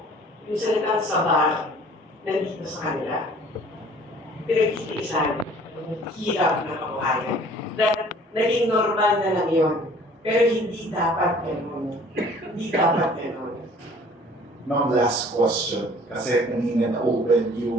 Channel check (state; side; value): normal; both; correlation 0.52